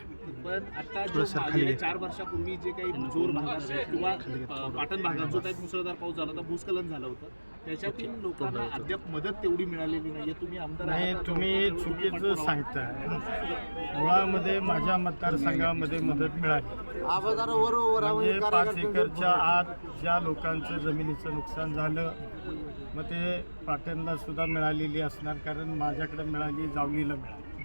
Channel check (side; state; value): both; inverted; correlation -1.00